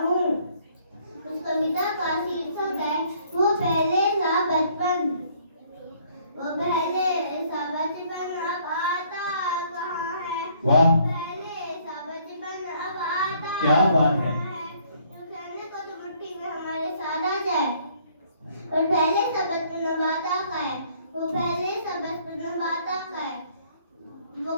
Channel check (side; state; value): both; inverted; correlation -0.63